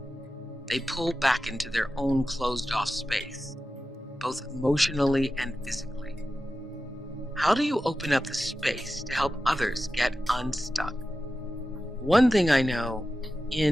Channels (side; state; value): both; normal; correlation 0.92